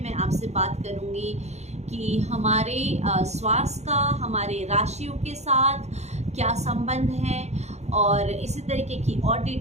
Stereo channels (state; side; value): late; left; 0.32 ms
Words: मैं आपसे बात करूँगी कि हमारे श्वास का हमारे राशियों के साथ क्या संबंध है, और इसी तरीके की और